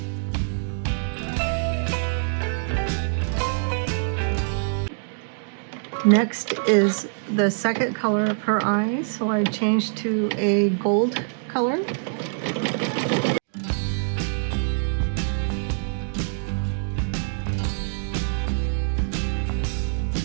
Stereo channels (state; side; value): silent; left; digital silence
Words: Next is the second color of her eyes, so I changed to a gold color.